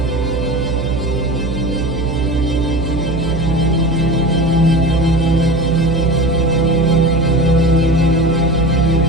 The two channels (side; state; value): right; noise; hum, 4 dB below the sound